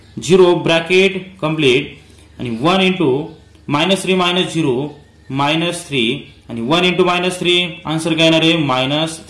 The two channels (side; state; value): both; identical; correlation 1.00